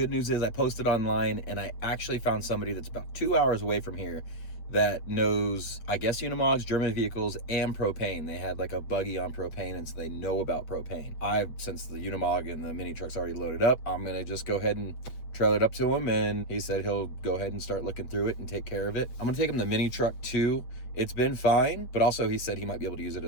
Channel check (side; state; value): right; late; 8.6 ms